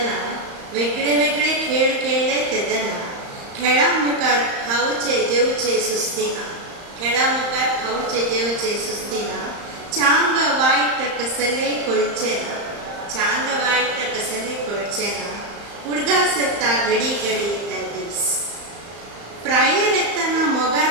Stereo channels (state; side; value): late; left; 35 ms